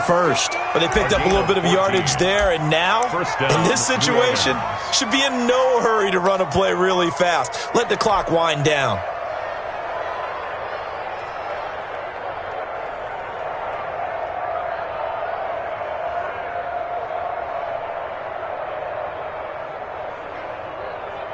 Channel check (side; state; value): both; identical; correlation 1.00